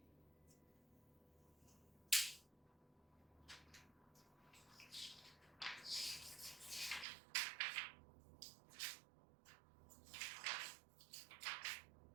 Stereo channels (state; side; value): drops out; left; at 7.1 s